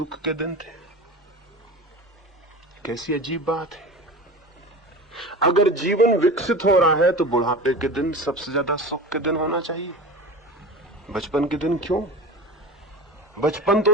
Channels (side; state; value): both; normal; correlation 0.32